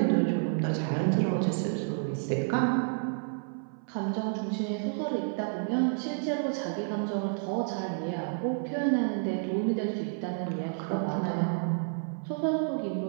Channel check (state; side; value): silent; left; 56 dB below the other